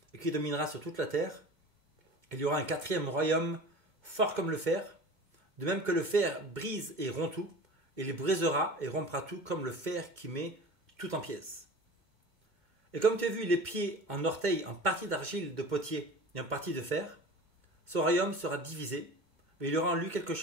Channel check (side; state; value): left; late; 2.2 ms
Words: et qui dominera sur toute la terre. Il y aura un quatrième royaume fort comme le fer, de même que le fer brise et rompt tout, il brisera et rompra tout comme le fer qui met tout en pièces. Et comme tu as vu les pieds en orteils en partie d'argile de potier et en partie de fer, ce royaume sera divisé, mais il y aura en lui quelque